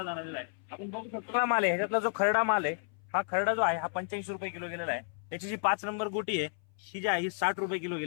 जाणवलेला आहे. आपण बघू शकतो हा माल आहे, ह्याच्यातला जो खरडा माल आहे, हा खरडा जो आहे हा 85 रुपये किलो गेलेला आहे. त्याची जी 5 नंबर गोटी आहे ही जी आहे ही 60 रुपये किलो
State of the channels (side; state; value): right; silent; 56 dB below the other